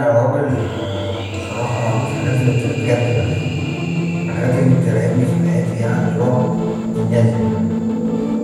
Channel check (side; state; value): both; identical; correlation 1.00